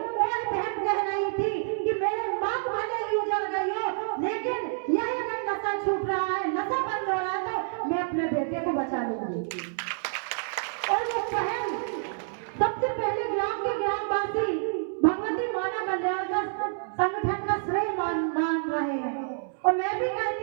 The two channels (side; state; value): left; silent; 59 dB below the other